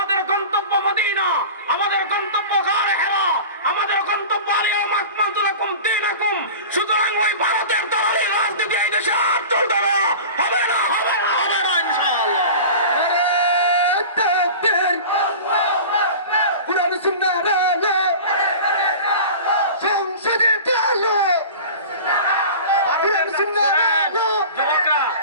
গন্তব্য মদিনা, আমাদের গন্তব্য গায়ে হেরা, আমাদের গন্তব্য আলিয়াম আকমালতু লাকুম দীনাকুম। সুতরাং ওই ভারতের দলালি রাজনীতি এই দেশে আর চলবে না, হবে না, হবে না, হবে না ইনশাআল্লাহ।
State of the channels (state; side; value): inverted; both; correlation -0.35